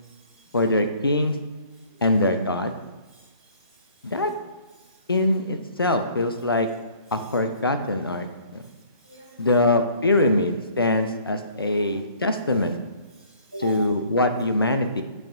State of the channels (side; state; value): both; inverted; correlation -0.55